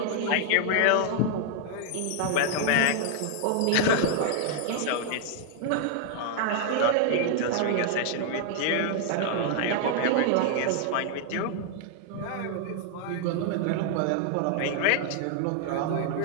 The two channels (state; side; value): different; both; correlation 0.00